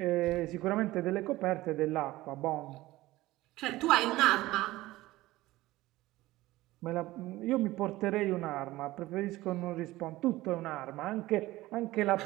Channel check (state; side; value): quieter; left; 17.8 dB